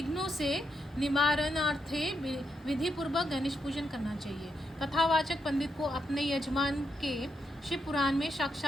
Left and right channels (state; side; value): normal; both; correlation 0.82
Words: से निवारणार्थे विधि पूर्वक गणेश पूजन करना चाहिए। कथावाचक पंडित को अपने यजमान के शिव पुराण में